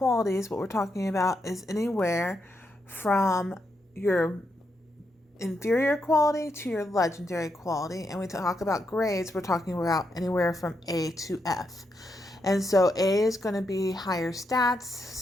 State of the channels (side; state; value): both; normal; correlation 0.82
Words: what we're talking about is anywhere from your inferior quality to your legendary quality. And we talk about grades, we're talking about anywhere from A to F. And so A is going to be higher stats.